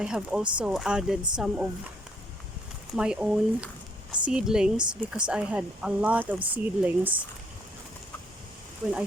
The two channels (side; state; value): both; normal; correlation 0.68